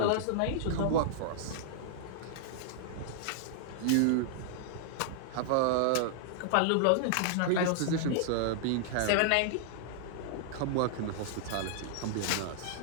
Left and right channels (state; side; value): different; both; correlation -0.01